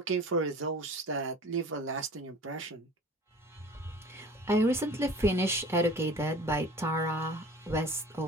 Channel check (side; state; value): both; normal; correlation 0.43